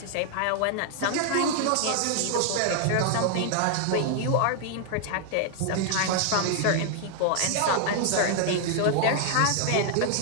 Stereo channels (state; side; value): different; both; correlation 0.00